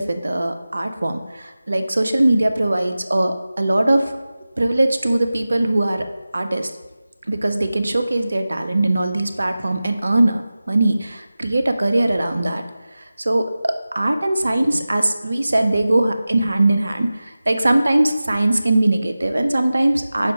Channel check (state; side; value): inverted; both; correlation -0.96